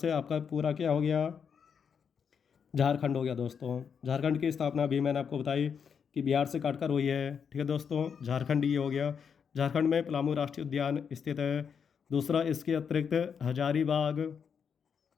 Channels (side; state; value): right; quieter; 6.8 dB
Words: आपका पूरा क्या हो गया, झारखंड हो गया दोस्तों। झारखंड की स्थापना भी मैंने आपको बताई कि बिहार से काटकर हुई है। ठीक है दोस्तों, झारखंड ये हो गया। झारखंड में पलामू राष्ट्रीय उद्यान स्थित है। दूसरा, इसके अतिरिक्त हजारीबाग